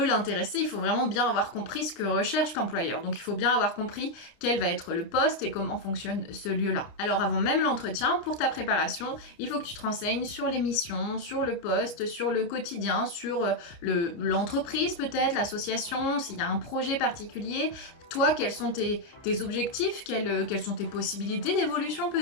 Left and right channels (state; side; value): late; right; 29 ms